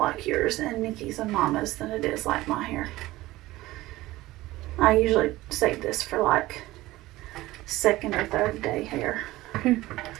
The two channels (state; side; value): quieter; left; 17.7 dB